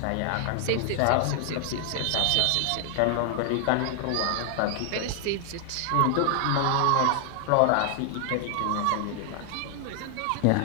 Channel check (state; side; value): different; both; correlation 0.00